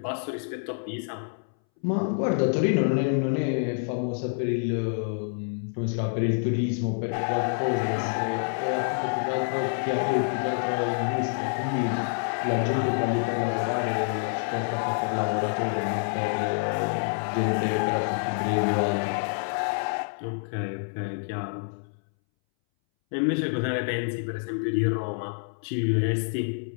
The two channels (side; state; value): right; silent; 60 dB below the other